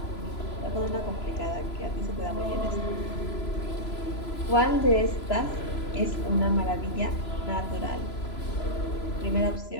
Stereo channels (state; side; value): late; right; 3.0 ms